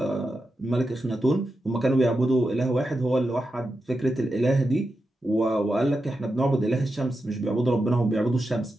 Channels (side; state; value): both; normal; correlation 0.89